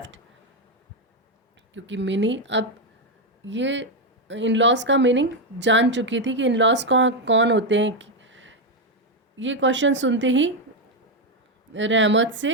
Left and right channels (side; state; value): both; normal; correlation 0.05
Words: क्योंकि मिनी अब ये इन-लॉज का मीनिंग जान चुकी थी कि इन-लॉज कौन होते हैं. ये क्वेश्चन सुनते ही रहमत